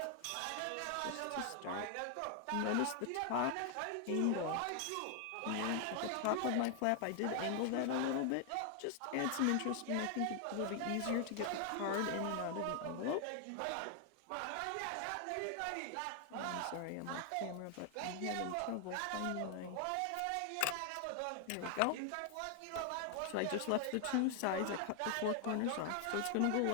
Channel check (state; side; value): different; both; correlation 0.00